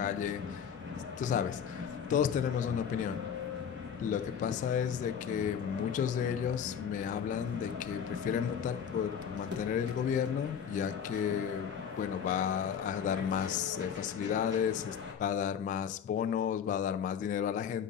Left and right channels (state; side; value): quieter; right; 7.8 dB